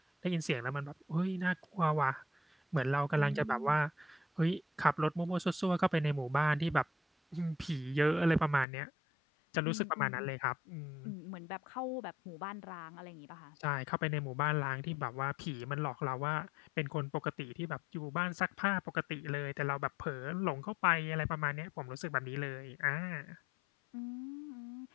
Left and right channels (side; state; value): right; drops out; at 8.7 s